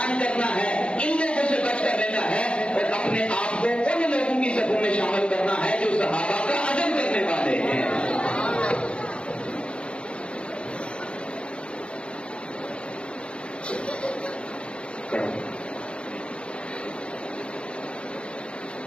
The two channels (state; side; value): late; right; 0.057 ms